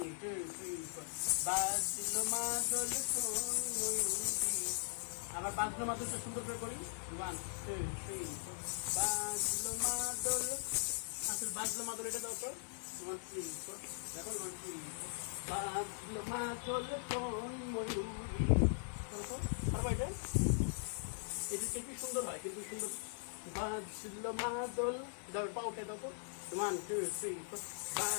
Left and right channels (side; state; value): right; silent; digital silence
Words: 2 3 4 বাজলো মাদল আবার বাজলো মাদলটা সুন্দর করে করি 1 2 3 4 বাজলো মাদল আসল বাজলো মাদল এটা দাও তো 1 3 4 দেখো 1 3 বাজলো মাদল কোন ময়ূরী করো পারবো এটা? এটি কি সুন্দর হয়, কিন্তু সুন্দর। বাজলো মাদল, দাও পা উঠে দাও তো। 1 2 3 4